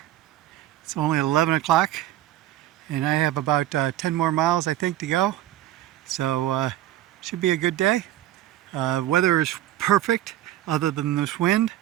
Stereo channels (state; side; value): quieter; left; 13.6 dB